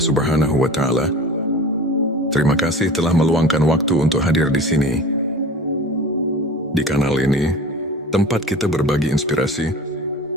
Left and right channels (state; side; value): normal; both; correlation 0.37